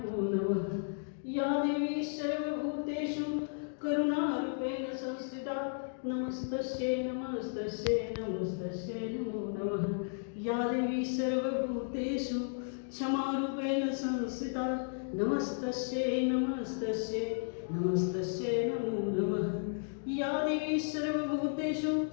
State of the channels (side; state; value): right; silent; digital silence